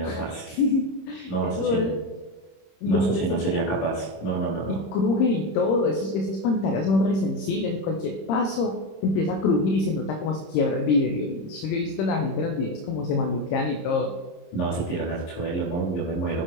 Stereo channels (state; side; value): late; right; 26 ms